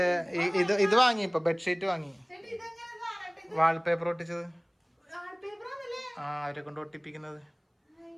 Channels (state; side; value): identical; both; correlation 1.00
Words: ഇത് വാങ്ങി ഇപ്പൊ ബെഡ്ഷീറ്റ് വാങ്ങി വാൾപേപ്പർ ഒട്ടിച്ചത് അവരെ കൊണ്ട് ഒട്ടിപ്പിക്കുന്നത്